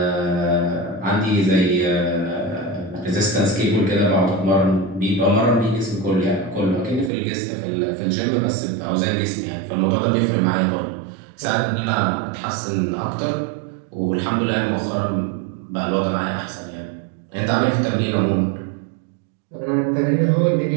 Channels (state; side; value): drops out; left; at 7.1 s